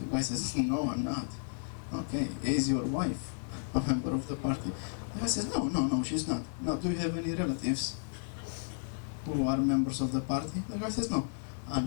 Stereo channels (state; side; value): silent; right; 56 dB below the other